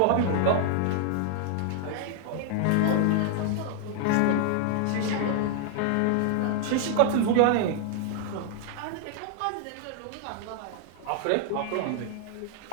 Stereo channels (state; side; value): different; both; correlation 0.00